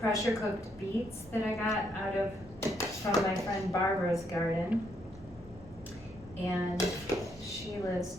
cooked beets that I got from my friend Barbara's garden. And she lives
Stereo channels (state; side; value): normal; both; correlation 0.74